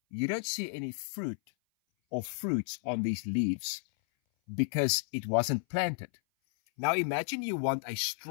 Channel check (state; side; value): silent; right; 56 dB below the other